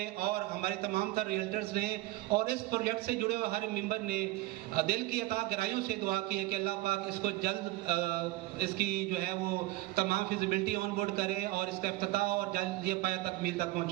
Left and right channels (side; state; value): left; quieter; 18.9 dB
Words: और हमारे तमाम तर रियल्टर्स ने और इस प्रोजेक्ट से जुड़े हुए हर मेंबर ने दिल की अता गहराइयों से दुआ की है कि अल्लाह पाक इसको जल्द इसकी जो है वो तमाम फिजिबिलिटी ऑन बोर्ड करे और इसका इफ्तिताह और जल्द ये पाया तकमील तक